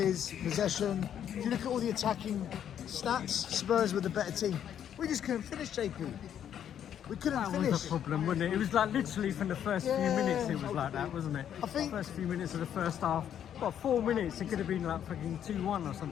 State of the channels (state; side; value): quieter; right; 9.6 dB